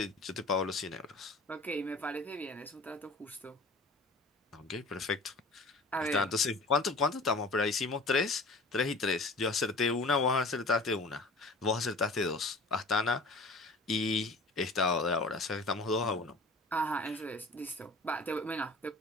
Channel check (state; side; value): quieter; right; 3.0 dB